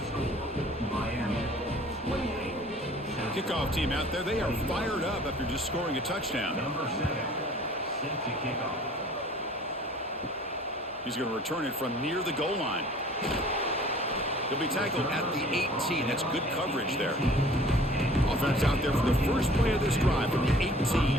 score Miami 28. Kickoff team out there. They are fired up after just scoring a touchdown. Number 7, set to kick off. He's going to return it from near the goal line. He'll be tackled at the 18. That's good coverage there. Offense out there for the first play of this drive from the 18.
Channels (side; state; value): both; normal; correlation 0.50